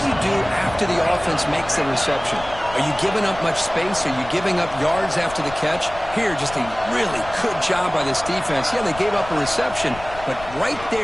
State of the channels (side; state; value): left; noise; rumble, 15 dB below the sound